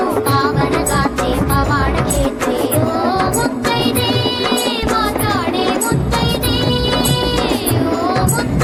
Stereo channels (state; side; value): identical; both; correlation 1.00